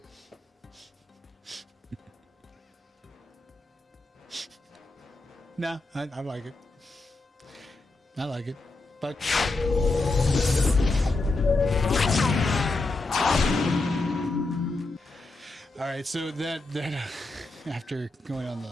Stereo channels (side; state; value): right; quieter; 3.1 dB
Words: No, I like it. I like it. But all right, so that after going on the